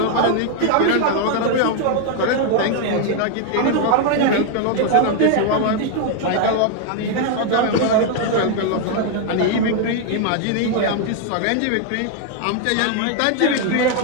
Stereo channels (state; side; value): different; both; correlation 0.00